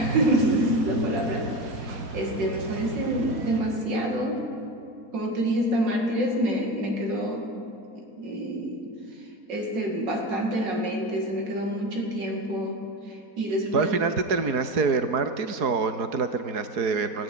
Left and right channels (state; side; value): late; left; 4.2 ms